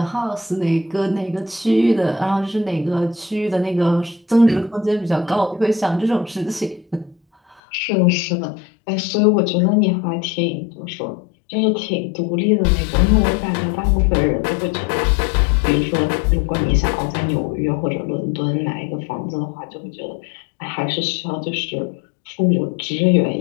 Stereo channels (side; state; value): right; drops out; at 7.6 s